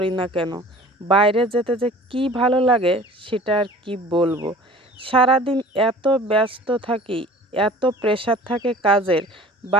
না কেন, বাইরে যেতে যে কি ভালো লাগে সেটা আর কি বলবো। সারাদিন এত ব্যস্ত থাকি, এত প্রেশার থাকে কাজের,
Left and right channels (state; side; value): normal; both; correlation 0.45